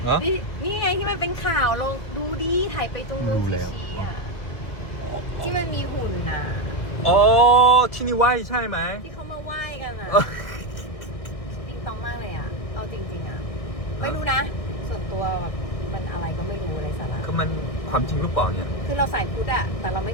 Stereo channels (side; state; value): right; late; 1.6 ms